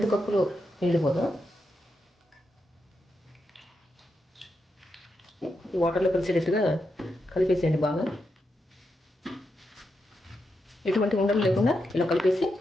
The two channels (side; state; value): both; normal; correlation 0.85